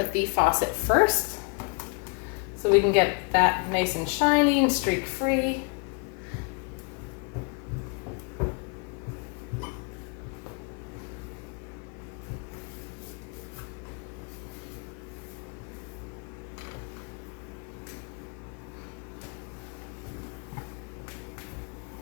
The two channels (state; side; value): quieter; right; 33.2 dB